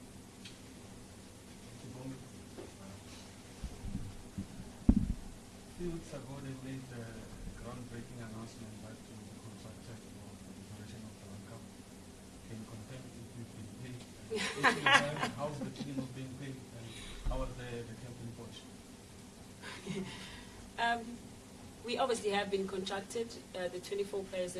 Few weeks ago, they made the groundbreaking announcement that the contracted operation of the World Cup. Can you confirm if you've been paid? How's the team of being paid, and how was the captain coach? We obviously have been contracted. The 24 players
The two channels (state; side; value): identical; both; correlation 1.00